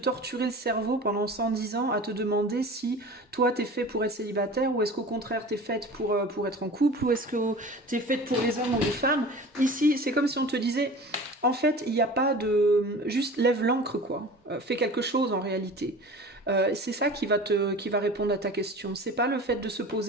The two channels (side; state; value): both; normal; correlation 0.39